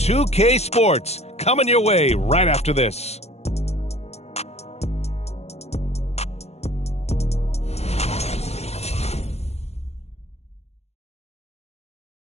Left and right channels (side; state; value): right; late; 0.31 ms